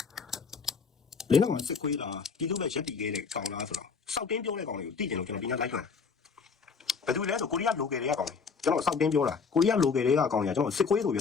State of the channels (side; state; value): right; quieter; 5.4 dB